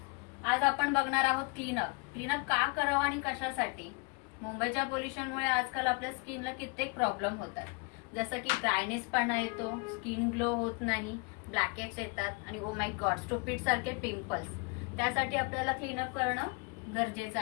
आज आपण बघणार आहोत क्लीनअप का करावं आणि कशासाठी। मुंबईच्या पोल्युशनमुळे आजकाल आपल्या स्किनला कित्येक प्रॉब्लेम होतात, जसं की ड्रायनेसपणा येतो, स्किन ग्लो होत नाही, ब्लॅकेट्स येतात आणि ओ माय गॉड स्टुपिड सारखे पिंपल्स। त्यासाठी आपल्याला क्लीनअप करणं गरजेचं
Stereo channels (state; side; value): quieter; right; 31.8 dB